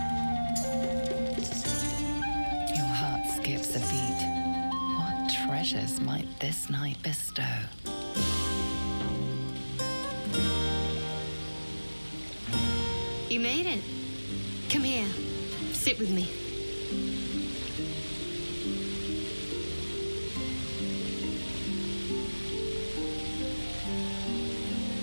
Your heart skips a beat. What treasures might this night bestow? you made it. Come here. Sit with me.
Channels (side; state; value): both; inverted; correlation -1.00